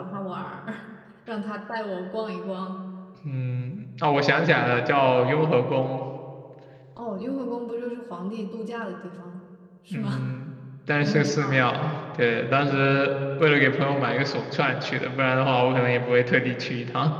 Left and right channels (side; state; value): both; identical; correlation 1.00